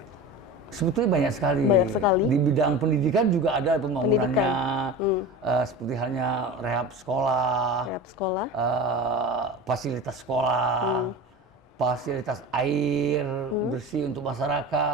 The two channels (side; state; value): both; normal; correlation 0.31